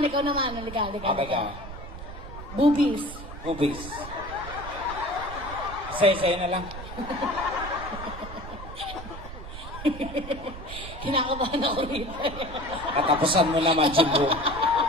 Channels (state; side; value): noise; right; rumble, 11 dB below the sound